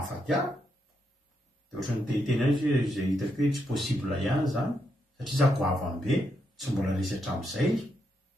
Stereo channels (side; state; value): both; normal; correlation 0.81